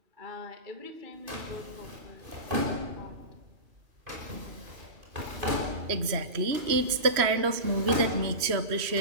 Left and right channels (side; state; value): left; late; 3.0 ms